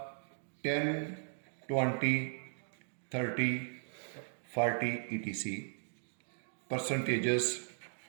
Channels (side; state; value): left; silent; digital silence